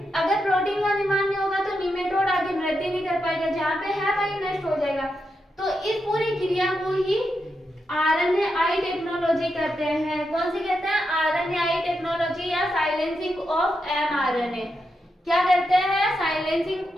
अगर प्रोटीन का निर्माण नहीं होगा तो निमेटोड आगे वृद्धि नहीं कर पाएगा, जहाँ पे है वही नष्ट हो जाएगा। तो इस पूरी क्रिया को ही RNAi टेक्नोलॉजी कहते हैं। कौन सी कहते हैं, RNAi टेक्नोलॉजी या साइलेंसिंग ऑफ mRNA। क्या करते हैं, साइलेंसिंग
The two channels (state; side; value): normal; both; correlation 0.85